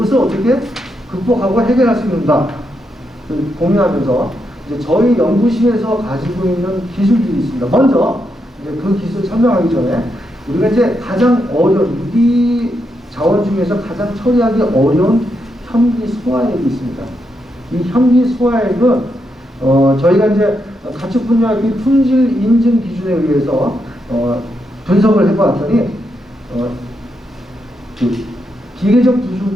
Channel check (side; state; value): both; normal; correlation 0.82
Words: 어떻게 극복하고 해결할 수 있는가 고민하면서 이제 저희 연구실에서 가지고 있는 기술들이 있습니다. 먼저 이제 그 기술 설명하기 전에 우리가 이제 가장 어려운 유기 자원 중에서 가장 처리하기 어려운 현기 소화액이 있습니다. 이 현기 소화액은 저희가 이제 가축 분야의 품질 인증 기준에 의해서 분석을 해보았더니 그 기계적